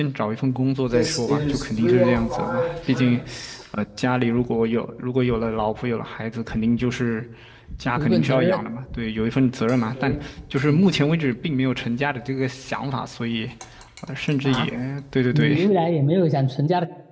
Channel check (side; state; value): both; identical; correlation 1.00